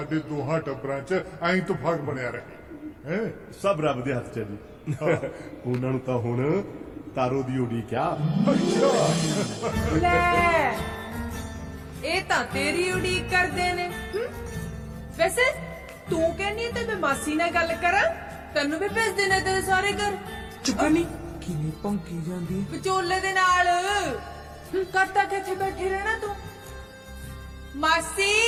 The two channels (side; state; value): both; identical; correlation 1.00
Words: ਦੋਹਾਂ ਟੱਬਰਾਂ 'ਚ ਐਂ ਇਤਫਾਕ ਬਣਿਆ ਰਹੇ। ਸਭ ਰੱਬ ਦੇ ਹੱਥ 'ਚ ਹੈ ਜੀ। ਉਹਨਾਂ ਨੂੰ ਤਾਂ ਹੁਣ ਤਾਰੋ ਦੀ ਉਡੀਕ ਆ। ਲੈ, ਇਹ ਤਾਂ ਤੇਰੀ ਉਡੀਕ ਕਰਦੇ ਨੇ। ਵੈਸੇ ਤੂੰ ਕਹਿੰਦੀ ਤੇ ਮੈਂ ਮਾਸੀ ਨਾਲ ਗੱਲ ਕਰਾਂ, ਤੈਨੂੰ ਵੀ ਭੇਜ ਦੇਣਾ ਤੇਰੇ ਸਾਰੇ ਘਰ। ਚੁਗਣੀ ਕਿਵੇਂ ਭੌਂਕੀ ਜਾਂਦੀ ਹੈ? ਵਿਚੋਲੇ ਦੇ ਨਾਲ ਕਰਤਾ ਕਿੱਥੇ ਬੈਠੇ ਰਹਿਣਾ ਤੂੰ? ਮਾਸੀ